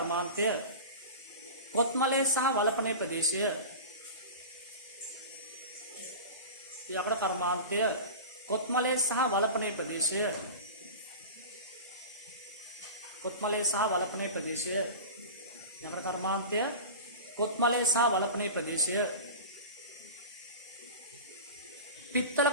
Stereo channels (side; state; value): both; inverted; correlation -0.31